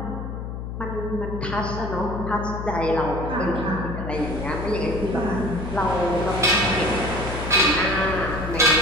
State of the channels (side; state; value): left; noise; hum, 6 dB below the sound